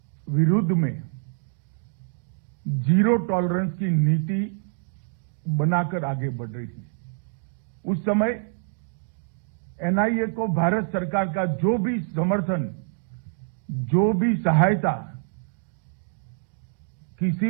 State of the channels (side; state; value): left; silent; digital silence